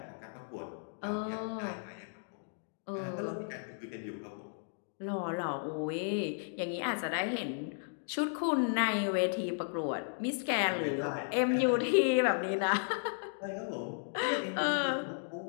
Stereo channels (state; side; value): silent; right; digital silence